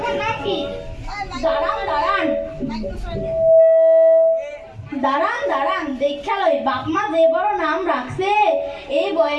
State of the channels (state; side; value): identical; both; correlation 1.00